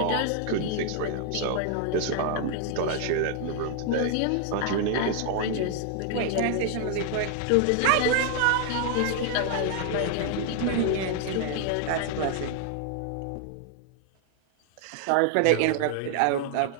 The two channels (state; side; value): different; both; correlation 0.00